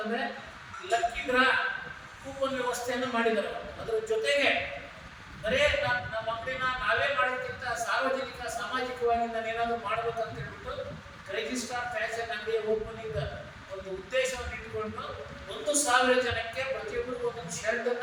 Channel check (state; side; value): identical; both; correlation 1.00